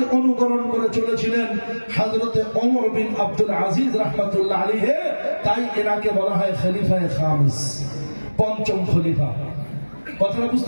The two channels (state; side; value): inverted; both; correlation -1.00